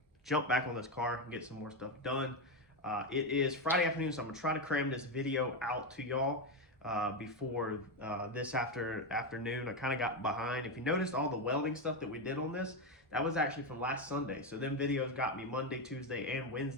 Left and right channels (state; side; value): normal; both; correlation 0.10